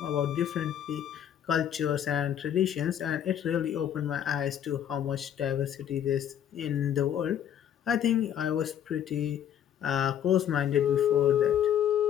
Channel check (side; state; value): right; quieter; 9.8 dB